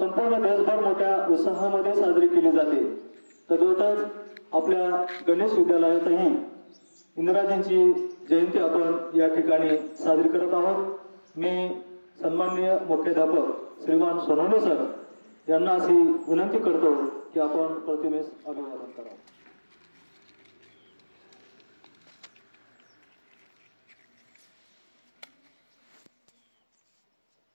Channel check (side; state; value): both; inverted; correlation -1.00